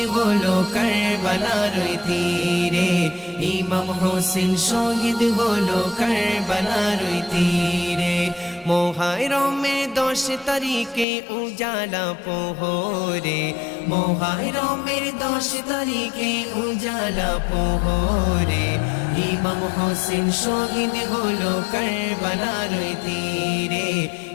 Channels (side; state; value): right; drops out; at 11.1 s